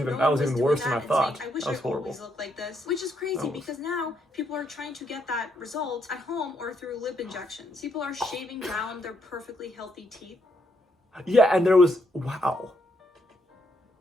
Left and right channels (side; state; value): both; normal; correlation 0.76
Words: even worse than I thought. I wish I always looked like this. Which is crazy because now people are trying to get that result at home or through lip injections. People are shaving down their perfectly healthy teeth. Yeah, and there was